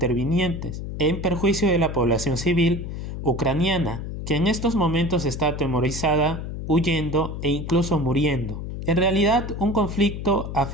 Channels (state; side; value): noise; left; hum, 6 dB below the sound